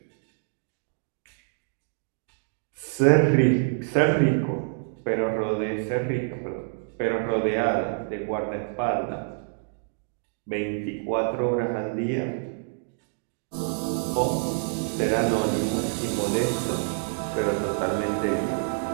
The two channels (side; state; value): left; silent; digital silence